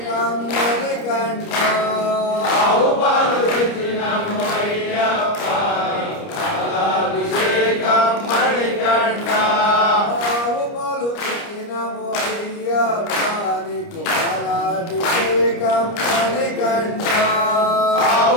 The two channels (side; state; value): right; late; 29 ms